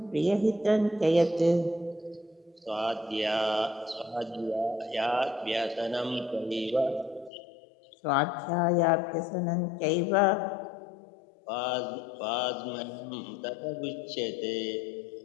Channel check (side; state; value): right; drops out; at 7.3 s